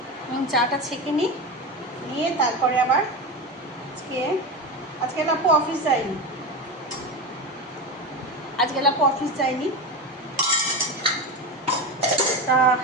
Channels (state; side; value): normal; both; correlation 0.21